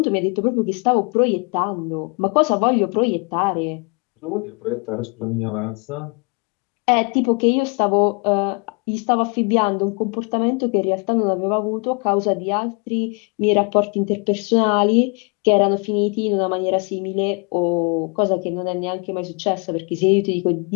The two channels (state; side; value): quieter; right; 34.0 dB